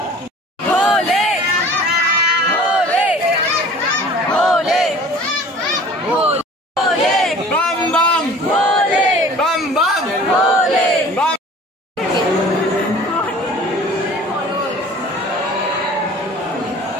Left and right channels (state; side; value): normal; both; correlation 0.46